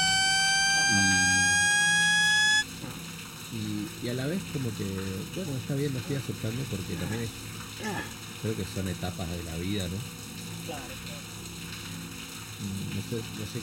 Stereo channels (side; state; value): both; identical; correlation 1.00